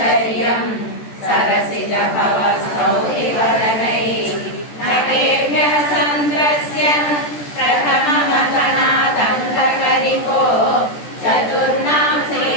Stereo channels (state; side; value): late; right; 14 ms